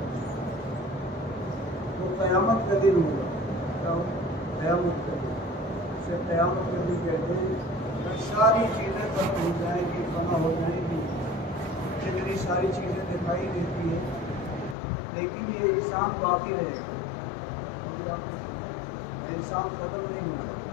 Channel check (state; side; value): drops out; right; at 14.8 s